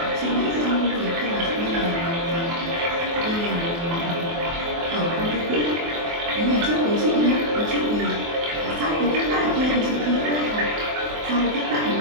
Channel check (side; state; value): left; late; 24 ms